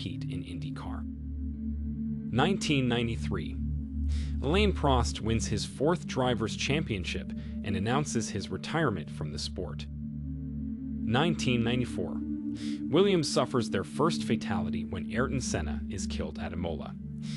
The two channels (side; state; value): both; identical; correlation 1.00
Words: in IndyCar. 1993. Alain Prost wins his 4th Drivers' Championship and announces his retirement from the sport. 1994. Williams suffers their first fatality when Ayrton Senna is killed at Imola.